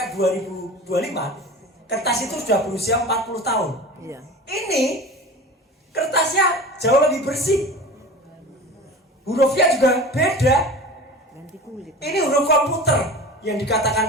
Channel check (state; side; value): normal; both; correlation 0.35